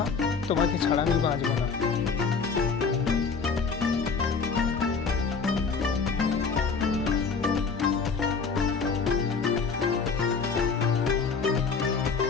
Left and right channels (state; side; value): quieter; right; 5.2 dB